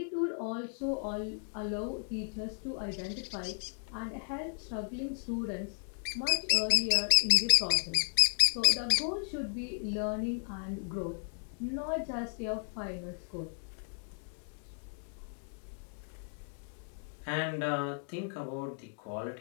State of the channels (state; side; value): silent; right; 55 dB below the other